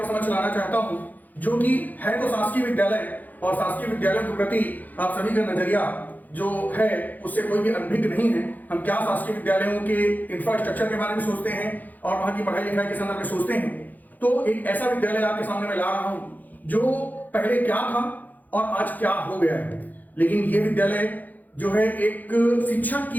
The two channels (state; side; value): late; right; 0.082 ms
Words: समझ लाना चाहता हूं जो कि है तो शासकीय विद्यालय और शासकीय विद्यालयों के प्रति आप सभी का नजरिया जो है उससे कोई भी अनभिज्ञ नहीं है। हम क्या शासकीय विद्यालयों के इंफ्रास्ट्रक्चर के बारे में सोचते हैं और वहां की पढ़ाई लिखाई के संदर्भ में सोचते हैं। तो एक ऐसा विद्यालय आपके सामने मैं ला रहा हूं जो पहले क्या था और आज क्या हो गया है। लेकिन ये विद्यालय जो है एक शिक्षक